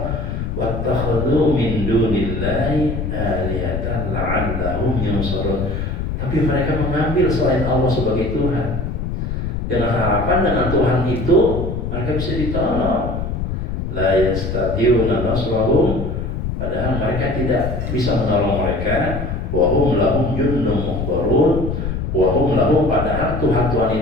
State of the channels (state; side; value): noise; left; rumble, 3 dB below the sound